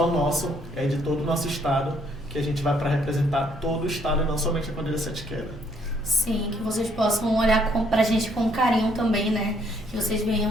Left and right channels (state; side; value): normal; both; correlation 0.67